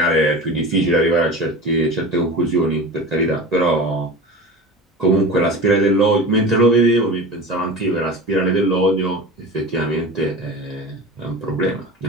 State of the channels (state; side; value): normal; both; correlation 0.32